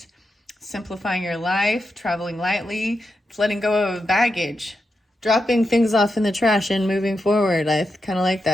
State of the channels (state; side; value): normal; both; correlation 0.87